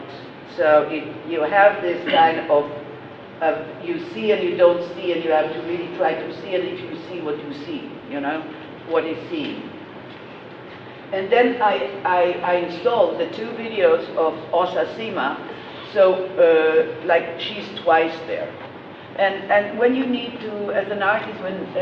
So you have this kind of, you see and you don't see, and you have to really try to see it if you see what you see, you know, what is seen. And then I installed the 2 videos of Osa Sima, so like she's twice there. And when you need to, as an artist,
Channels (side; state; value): both; identical; correlation 1.00